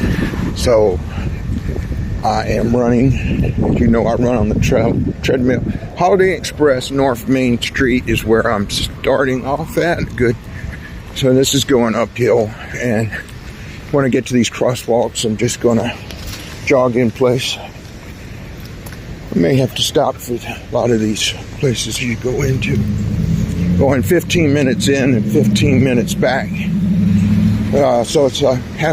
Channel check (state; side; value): identical; both; correlation 1.00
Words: so I am running. As you know, I run on the treadmill. Holiday Express North Main Street is where I'm starting off at. Good. So this is going uphill, and when I get to these crosswalks, I'm just gonna jog in place. I may have to stop for a lot of these places you go into. Going 15 minutes in and 15 minutes back. So it's a